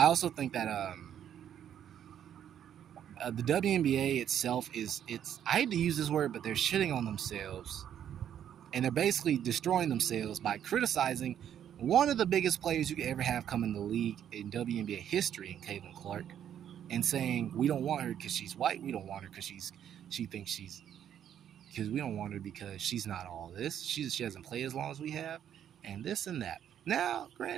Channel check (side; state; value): left; quieter; 9.8 dB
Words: the WNBA itself I hate to use this word, but they're shitting on themselves. And they're basically destroying themselves by criticizing one of the biggest players you could ever have come in the league in WNBA history, in Caitlin Clark, and saying we don't want her because she's white. We don't want her because we don't want her because she's not all this. She hasn't played as long as we have, and this and that. Now,